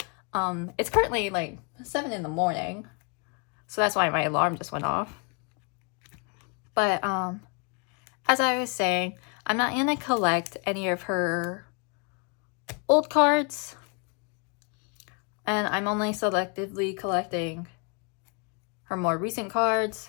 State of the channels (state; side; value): quieter; right; 36.7 dB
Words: It's currently like 7 in the morning, so that's why my alarm just went off. But as I was saying, I'm not gonna collect any of her old cards, and I'm only selectively collecting her more recent